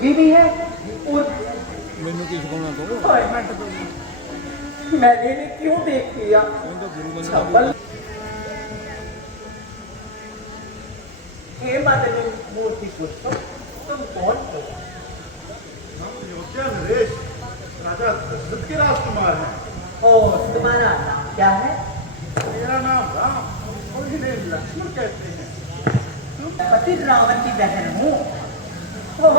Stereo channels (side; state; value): both; normal; correlation -0.06